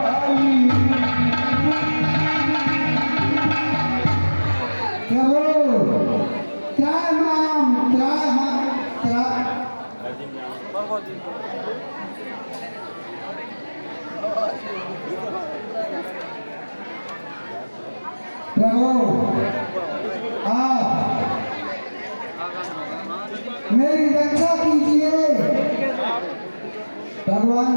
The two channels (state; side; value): inverted; both; correlation -1.00